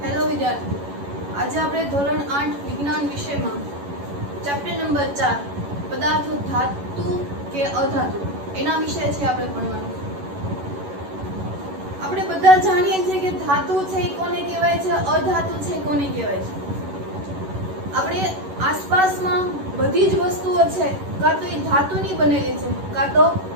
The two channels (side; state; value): left; late; 11 ms